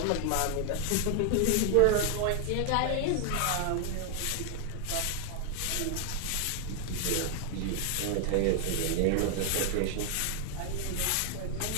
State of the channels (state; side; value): different; both; correlation 0.00